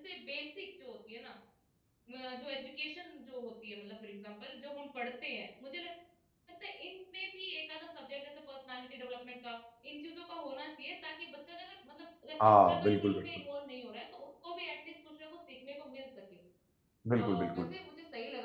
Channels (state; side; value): identical; both; correlation 1.00